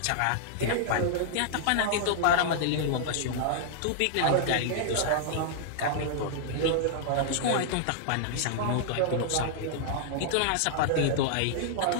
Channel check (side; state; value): both; different; correlation -0.01